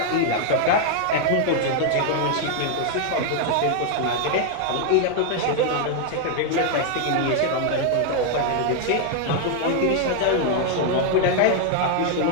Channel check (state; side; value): different; both; correlation 0.00